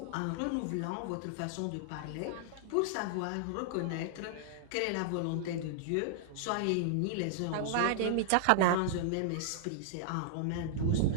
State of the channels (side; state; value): both; different; correlation -0.01